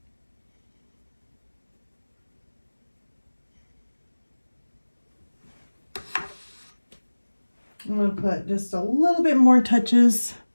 I'm going to put just a little bit more touches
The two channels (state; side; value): inverted; both; correlation -1.00